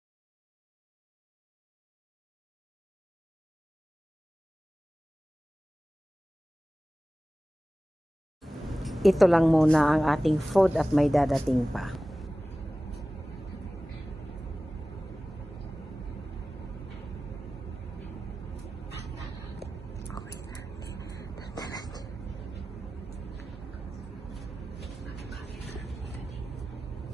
Ito lang muna ang ating food at may dadating pa.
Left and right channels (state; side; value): normal; both; correlation 0.96